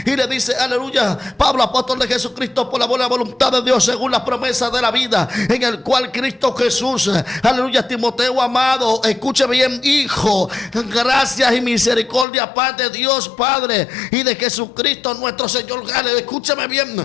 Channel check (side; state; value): right; drops out; at 12.2 s